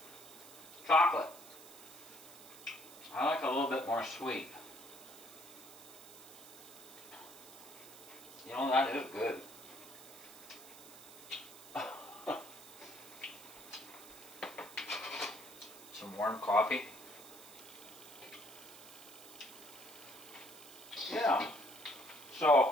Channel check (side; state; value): right; noise; hiss, 17 dB below the sound